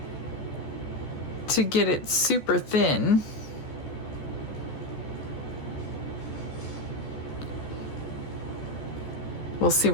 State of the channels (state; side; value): late; right; 14 ms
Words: to get it super thin. We'll see